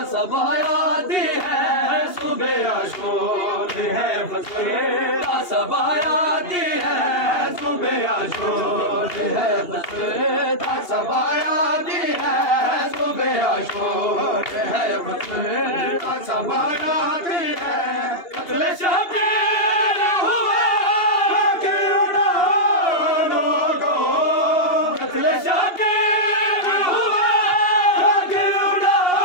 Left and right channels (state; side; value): late; right; 2.8 ms